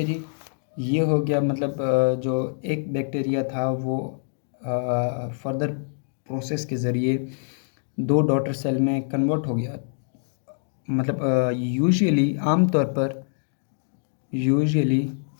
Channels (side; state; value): right; silent; digital silence